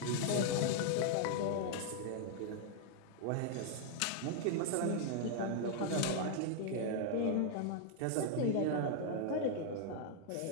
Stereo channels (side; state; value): both; different; correlation 0.00